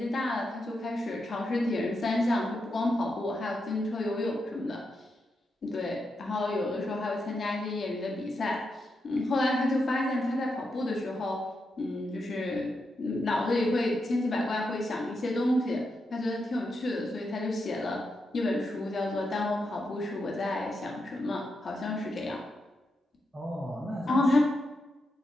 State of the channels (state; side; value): normal; both; correlation 0.85